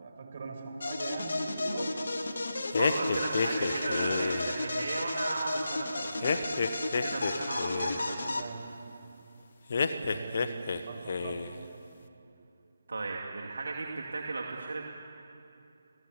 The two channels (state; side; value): inverted; both; correlation -0.87